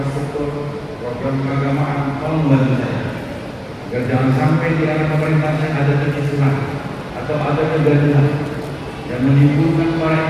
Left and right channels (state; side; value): identical; both; correlation 1.00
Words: program keagamaan, tolong membantu saya. Agar jangan sampai di era pemerintahan ada kekisuhan atau ada kegaduhan yang menimbulkan